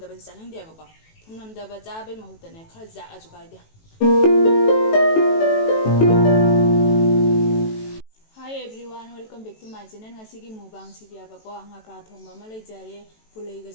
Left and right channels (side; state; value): right; late; 18 ms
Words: ꯆꯥꯅꯤꯡꯗꯦꯕꯀꯣ. ꯊꯨꯝ ꯅꯝꯗꯕ ꯆꯥꯕꯩ ꯃꯍꯨꯠꯇꯅꯦ ꯈꯔ ꯖꯥꯛꯑꯁꯨ ꯀꯥꯏꯗꯦ. Hi everyone, welcome back to my channel. Ngasigi mukbang sidiabako ngakra thongba ama leijare, pulaiga